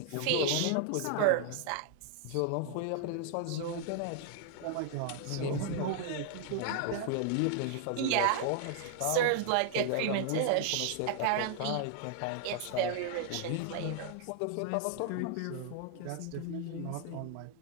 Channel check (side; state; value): both; different; correlation 0.00